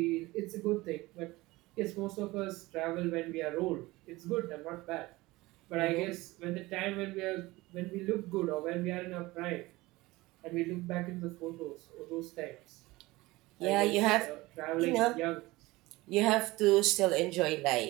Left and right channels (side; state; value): left; quieter; 20.4 dB